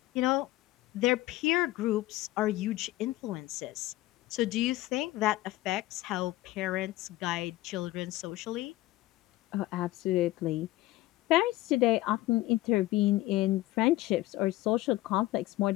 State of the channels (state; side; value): quieter; right; 17.4 dB